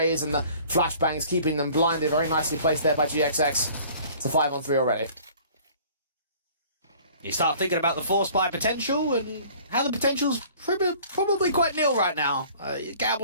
and the flashbangs, keeping them blinded. Very nicely placed there by GXX. It's a 5-on-3 already. You start thinking about the force buy potential and how the potential's probably quite nil right now.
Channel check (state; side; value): inverted; both; correlation -0.51